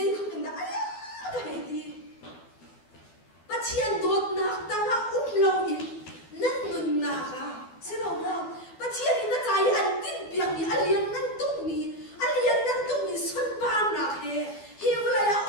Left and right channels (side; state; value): right; late; 12 ms